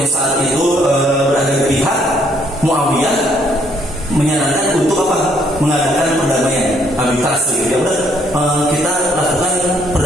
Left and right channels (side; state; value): both; normal; correlation 0.67